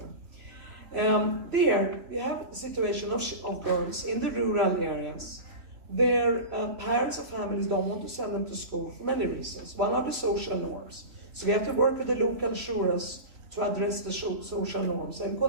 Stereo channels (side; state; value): left; late; 3.0 ms